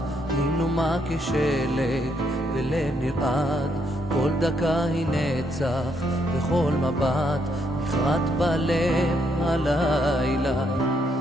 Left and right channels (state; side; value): normal; both; correlation 0.74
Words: היא כשלג ולב נרעד, כל דקה היא נצח וכל מבט נחרט בלב הלילה.